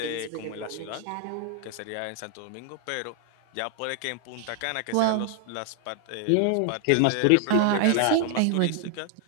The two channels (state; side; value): different; both; correlation 0.00